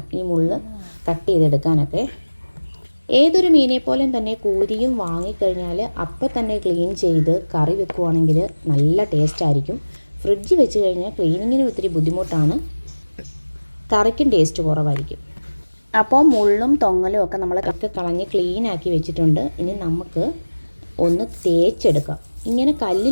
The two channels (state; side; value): inverted; both; correlation -1.00